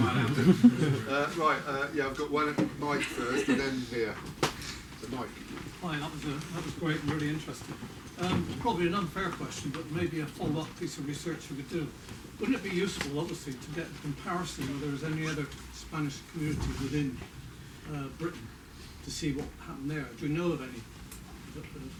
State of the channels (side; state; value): both; identical; correlation 1.00